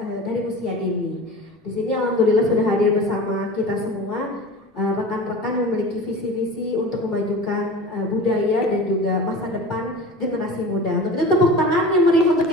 dari usia dini. Di sini alhamdulillah sudah hadir bersama kita semua. Rekan-rekan memiliki visi-visi untuk memajukan budaya dan juga masa depan generasi muda. Untuk itu tepuk tangan yang meriah untuk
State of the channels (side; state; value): both; normal; correlation 0.35